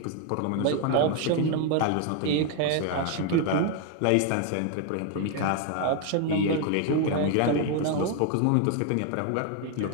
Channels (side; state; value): both; different; correlation 0.01